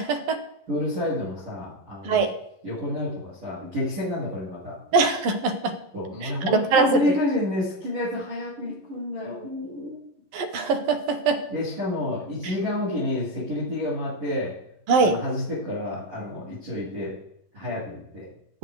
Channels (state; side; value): late; left; 11 ms